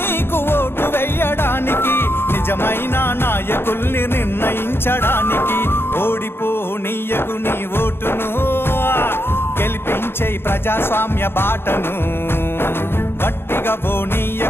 నీకు ఓటు వెయ్యడానికి. నిజమైన నాయకుల్ని నిర్ణయించడానికి ఓడిపోనీయకు నీ ఓటును, గెలిపించే ప్రజాస్వామ్య బాటను. గట్టిగా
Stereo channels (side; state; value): right; late; 0.11 ms